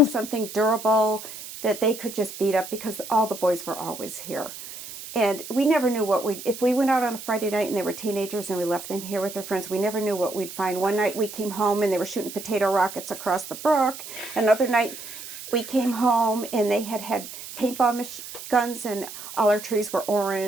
something durable that they could just beat up because all the boys were always here. And we never knew if we went out on a Friday night and they were teenagers and we left them here with their friends, we never knew what we'd find. One night we came home and they were shooting potato rockets across the brook. Another night we came home and they had paintball guns and all our trees were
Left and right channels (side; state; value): right; noise; hiss, 12 dB below the sound